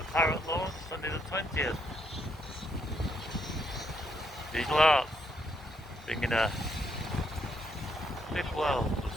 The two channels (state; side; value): normal; both; correlation 0.74